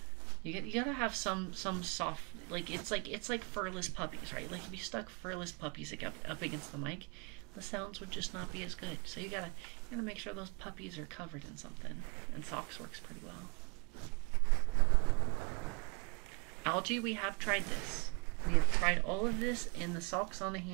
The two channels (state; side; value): quieter; left; 32.3 dB